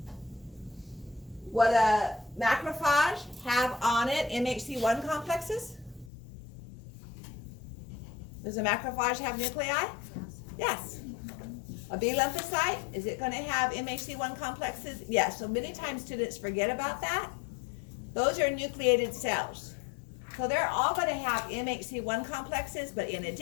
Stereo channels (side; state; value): right; drops out; at 6.1 s